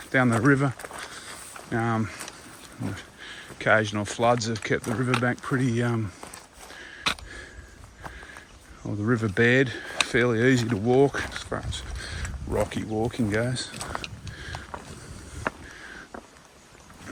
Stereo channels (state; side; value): identical; both; correlation 1.00